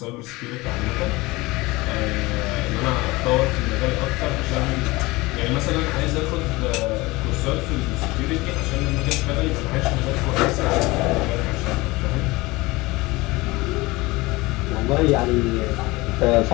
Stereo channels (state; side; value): quieter; right; 21.7 dB